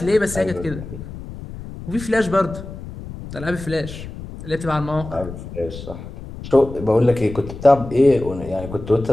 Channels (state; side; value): noise; left; rumble, 12 dB below the sound